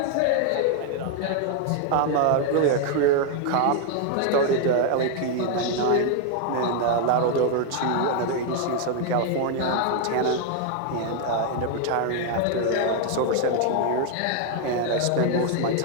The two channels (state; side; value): different; both; correlation 0.00